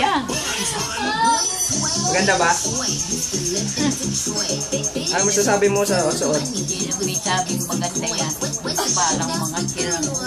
Maganda ba? Ano masasabi mo sa suot? Hindi naman sabing maganda yan. Parang mga sirang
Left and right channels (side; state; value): both; identical; correlation 1.00